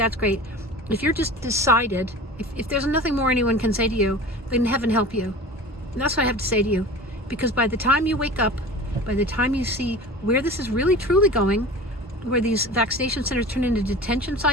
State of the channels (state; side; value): normal; both; correlation 0.37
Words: great. If you're just decided, if there's nothing more anyone can say to you, then heaven help you. And that's what I have to say to you. Because by the time you wake up, by the time you see where this is really truly going, where these vaccination centers turn into detention